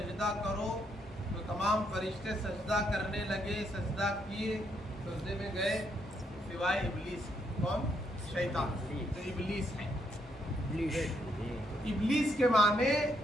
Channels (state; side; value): normal; both; correlation 0.75